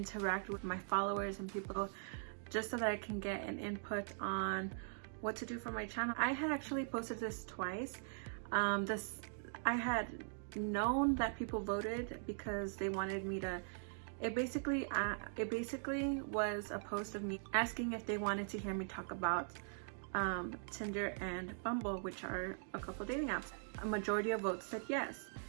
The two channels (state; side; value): silent; left; digital silence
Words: with my followers and people just so that I can get an input on what to do for my channel. I had actually posted this twice. I had known that people voted because they wanted me to, it basically was a post of me asking if they wanted to hear me talk about Tinder and Bumble, which are a couple dating apps. A majority of votes said yes.